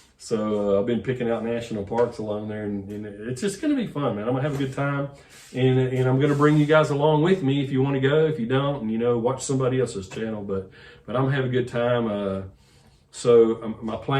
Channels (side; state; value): both; identical; correlation 1.00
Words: So I've been picking out national parks along there, and it's just gonna be fun, man. I'm gonna have a good time. And I'm going to bring you guys along with me if you want to go. If you don't, watch somebody else's channel. But I'm going to have a good time. So my